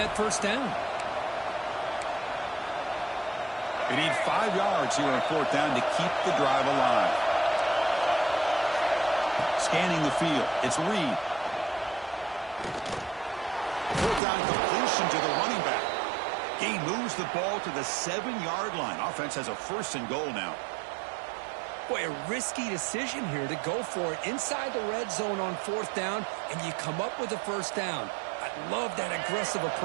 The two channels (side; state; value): left; drops out; at 14.2 s